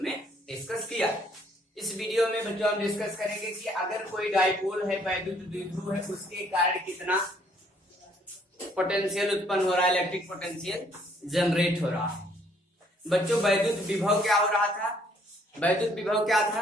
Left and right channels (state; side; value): normal; both; correlation 0.64